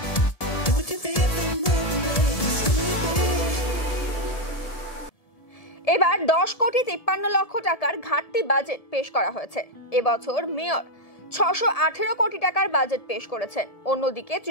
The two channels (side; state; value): right; late; 1.7 ms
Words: এবার 10 কোটি 53 লক্ষ টাকার ঘাটতি বাজেট পেশ করা হয়েছে। এবছর মেয়র 618 কোটি টাকার বাজেট পেশ করেছেন। অন্যদিকে